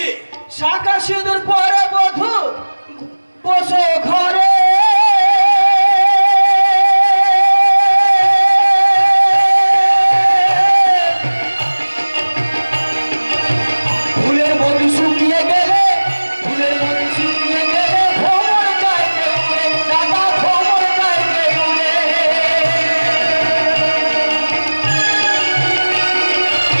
শাখা সিঁদুর পরে বধূ বসো ঘরে,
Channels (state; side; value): inverted; both; correlation -1.00